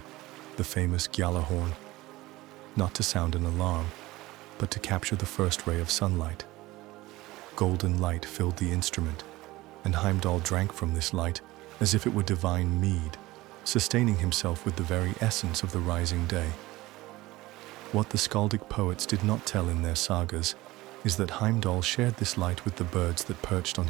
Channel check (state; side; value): quieter; left; 18.9 dB